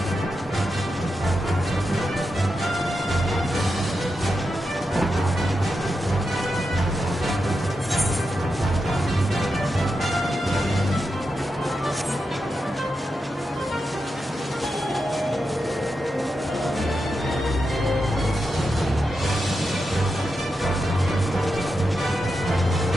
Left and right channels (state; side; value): normal; both; correlation 0.88